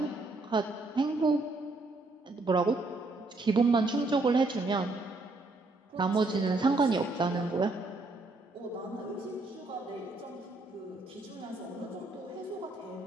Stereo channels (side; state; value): left; quieter; 3.1 dB